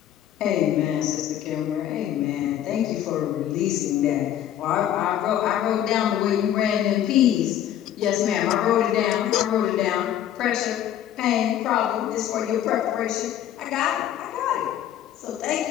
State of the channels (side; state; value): right; quieter; 11.2 dB